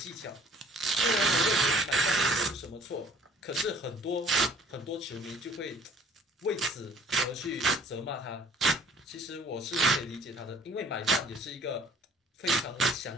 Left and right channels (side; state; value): both; normal; correlation 0.55